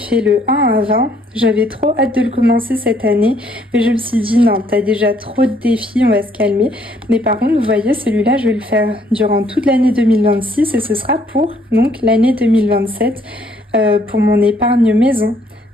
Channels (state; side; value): normal; both; correlation 0.66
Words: le 1 à 20. J'avais trop hâte de le commencer cette année, mais je me suis dit non, t'as déjà trop de défis, on va se calmer. Mais par contre, vous voyez, celui-là, je vais le faire durant toute l'année 2026 et ce sera pour donc l'année 2027 pour mon épargne maison.